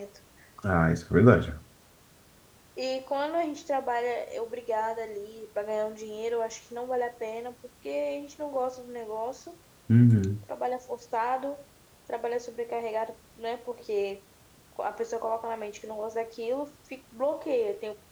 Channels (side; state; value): both; identical; correlation 1.00